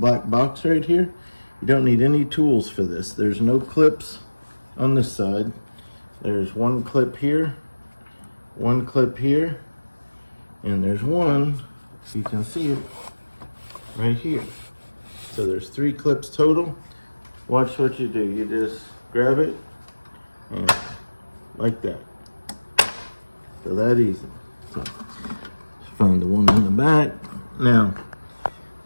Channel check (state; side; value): inverted; both; correlation -1.00